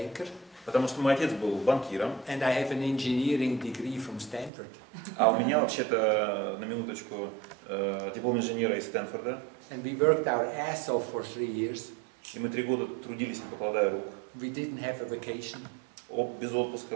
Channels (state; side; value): drops out; left; at 4.5 s